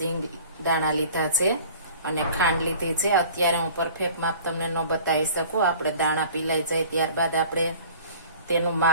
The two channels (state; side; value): inverted; both; correlation -0.47